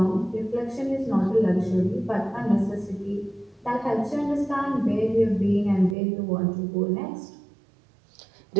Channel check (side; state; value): left; drops out; at 6.0 s